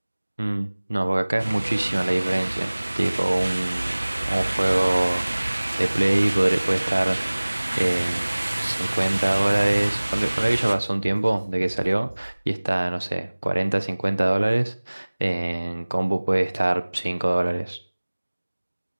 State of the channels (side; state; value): both; inverted; correlation -1.00